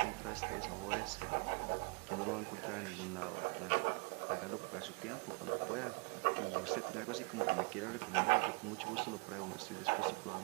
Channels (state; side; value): quieter; left; 29.4 dB